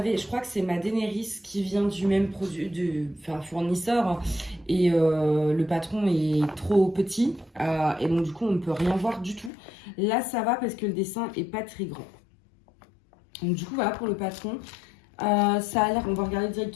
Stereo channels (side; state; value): right; drops out; at 9.5 s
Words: crois que c'est ma Daenerys qui vient du même fournisseur. Et le patron est trop petit. Et donc, du coup, on ne peut rien voir du tout. Là, ça va parce que le dessin est pas très grand. Donc, du coup, voilà pour le patron. Ça a l'air, on va regarder